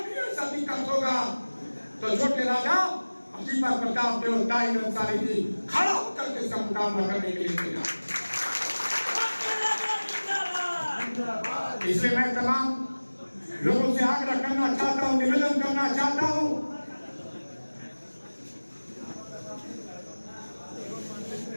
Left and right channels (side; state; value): both; inverted; correlation -1.00